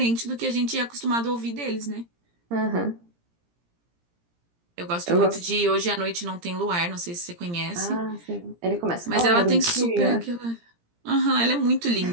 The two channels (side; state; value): left; late; 17 ms